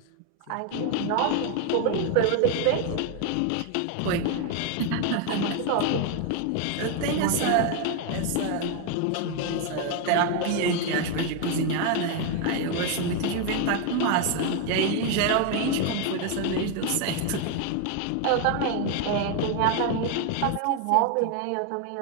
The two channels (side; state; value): both; different; correlation 0.01